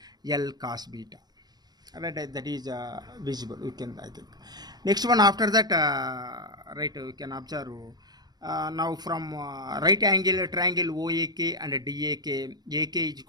cos beta, right? That is visible, we can, I think. Next one after that, right, we can observe now from right angle triangle OAK and DAK, AK is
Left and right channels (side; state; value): left; late; 0.19 ms